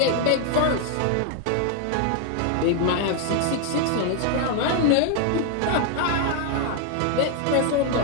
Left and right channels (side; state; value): both; different; correlation 0.00